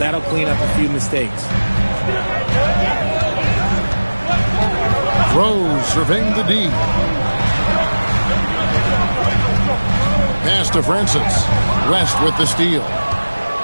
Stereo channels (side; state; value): both; inverted; correlation -1.00